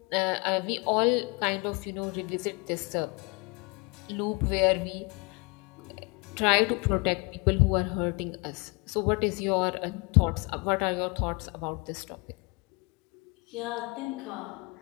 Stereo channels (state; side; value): quieter; right; 29.4 dB